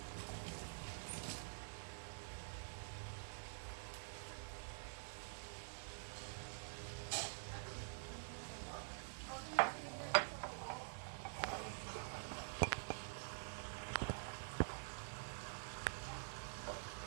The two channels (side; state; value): left; silent; digital silence